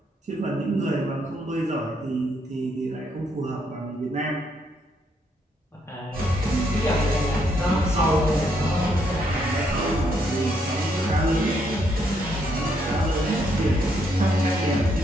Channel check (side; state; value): both; normal; correlation 0.73